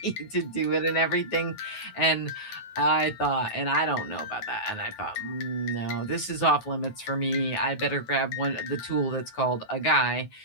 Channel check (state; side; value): late; right; 9.3 ms